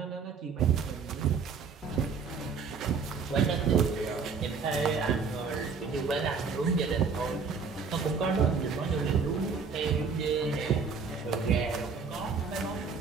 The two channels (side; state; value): left; quieter; 5.4 dB